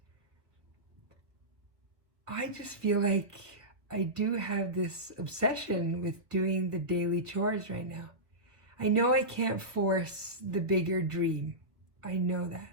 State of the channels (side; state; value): left; late; 1.6 ms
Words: I just feel like I do have this obsession with doing the daily chores right now. I know I can't force the bigger dream. I know